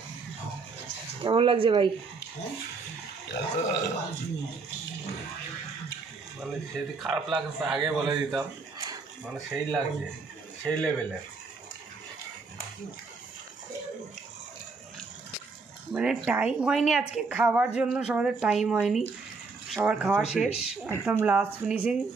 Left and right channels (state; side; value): quieter; left; 4.3 dB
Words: কেমন লাগছে ভাই? মানে যদি খারাপ লাগছে আগে বলে দিতাম, মানে সেই লাগছে, সেই লেভেলে। মানে টাইম হয়নি আজকে খাওয়ার জন্য, সবাদের টাইম হয়নি, সবার খাওয়া শেষ, একদম লাস্ট ফিনিশিং,